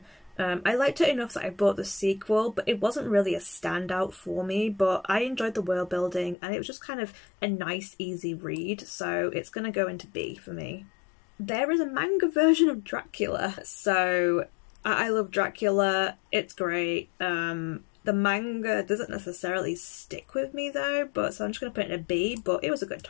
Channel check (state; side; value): drops out; right; at 6.4 s